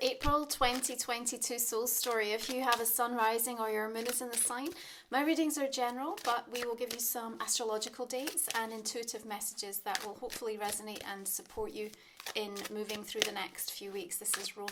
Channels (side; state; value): both; identical; correlation 1.00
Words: April 2022 soul story. If you have a sun rising or your moon is in the sign, my readings are general, but we will give you some astrological dates and intuitive messages that will hopefully resonate and support you in moving through the next few weeks. This is